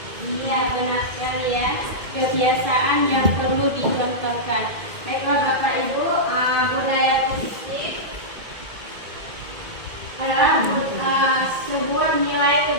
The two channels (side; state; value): left; late; 2.1 ms